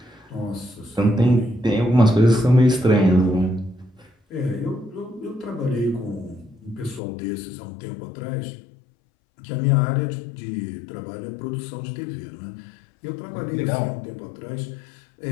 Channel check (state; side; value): drops out; right; at 7.0 s